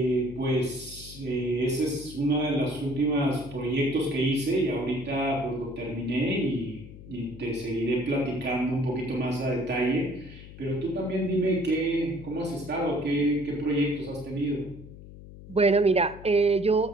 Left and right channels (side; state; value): left; noise; hum, 16 dB below the sound